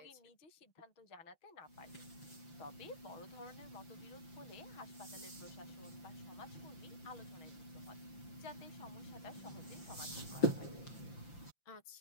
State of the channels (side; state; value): right; late; 5.8 ms